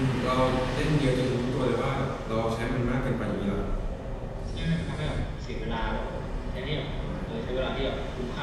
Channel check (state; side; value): identical; both; correlation 1.00